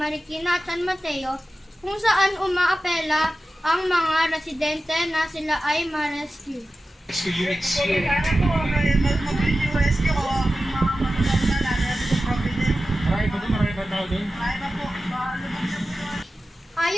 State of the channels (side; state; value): both; normal; correlation 0.94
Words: at San Mateo, kung saan umaapela ang mga residente na sila ay ma-rescue. Rescue units. Sana po, mabilis yung rescue o yung mga manulang na natin sa Providence. Marami pa tao doon? Marami pa po, lubog na po.